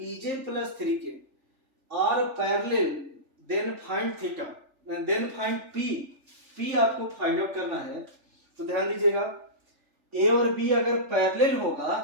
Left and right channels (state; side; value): late; left; 3.4 ms